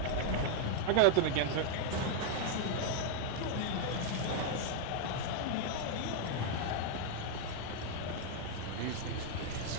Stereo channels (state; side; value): different; both; correlation 0.00